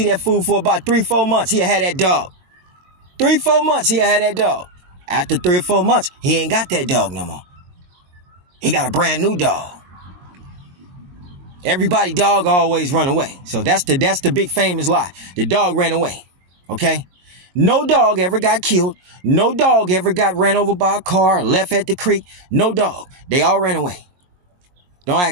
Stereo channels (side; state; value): left; late; 22 ms